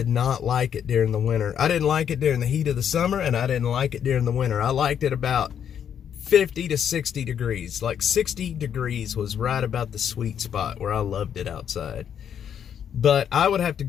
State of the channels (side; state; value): right; quieter; 8.7 dB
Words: not like it during the winter. I didn't like it during the heat of the summer, and I didn't like it during the winter. I liked it about 50 to 60 degrees. Like 60 degrees was right about the sweet spot where I loved it outside. But I would have to